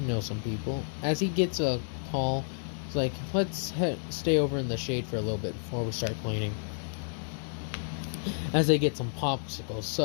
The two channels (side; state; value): right; silent; 57 dB below the other